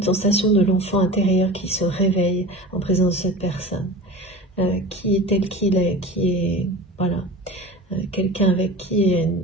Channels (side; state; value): both; normal; correlation 0.34